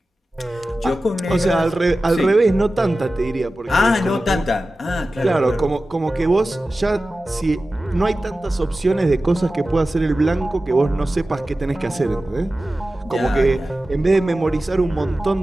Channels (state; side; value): normal; both; correlation 0.95